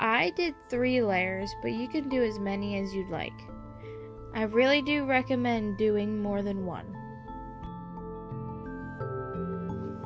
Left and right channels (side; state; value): both; identical; correlation 1.00